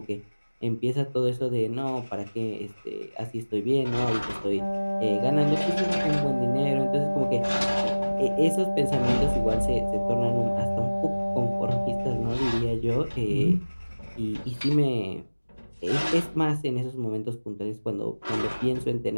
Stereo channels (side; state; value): both; inverted; correlation -1.00